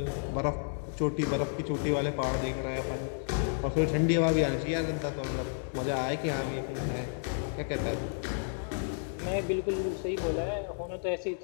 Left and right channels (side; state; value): right; silent; digital silence